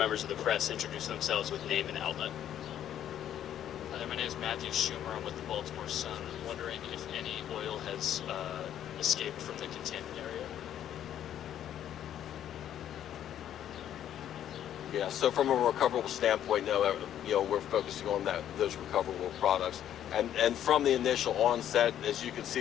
of the press introduce themselves with name and outlet. My name is Matthew Schumer. I'm with the Baltimore Sun. I'm wondering if any oil has escaped from the containment area. Yeah. So from a recoverable standpoint, no. We're focusing on those recoverable products. And from the initial onset, as you can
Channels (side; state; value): right; quieter; 10.7 dB